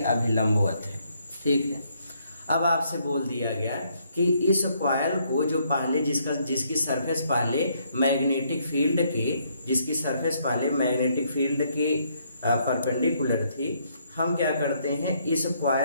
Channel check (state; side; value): inverted; both; correlation -0.71